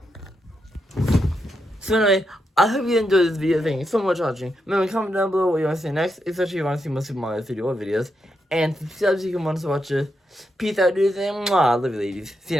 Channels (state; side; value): normal; both; correlation 0.83